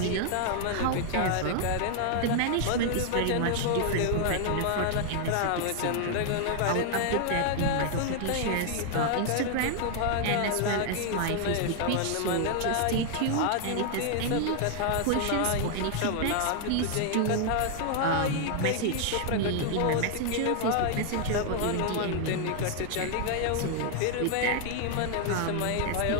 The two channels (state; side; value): different; both; correlation 0.00